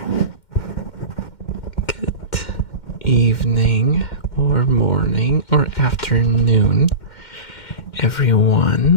Good evening, or morning, or afternoon,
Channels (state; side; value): late; right; 2.1 ms